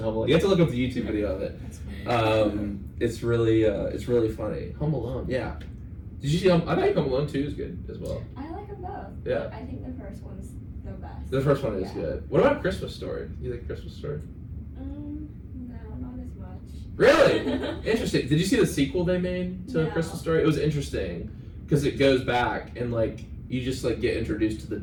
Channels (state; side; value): identical; both; correlation 1.00